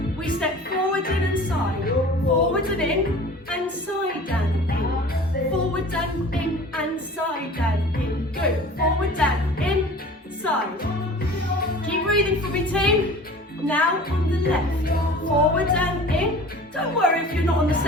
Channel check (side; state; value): both; normal; correlation 0.42